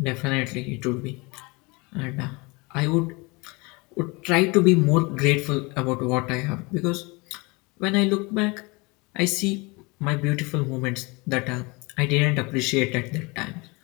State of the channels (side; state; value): right; quieter; 26.7 dB